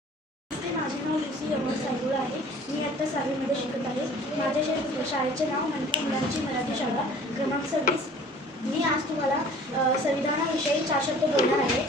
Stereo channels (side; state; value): both; normal; correlation 0.49